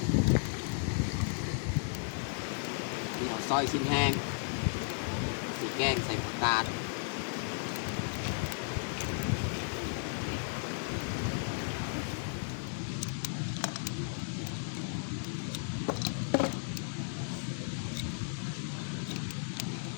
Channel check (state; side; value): silent; right; digital silence